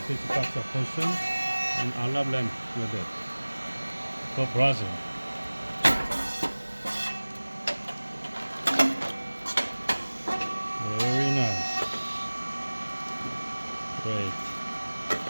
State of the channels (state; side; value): inverted; both; correlation -1.00